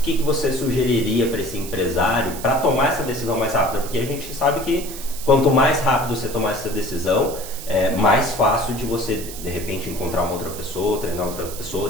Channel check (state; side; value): noise; right; hiss, 12 dB below the sound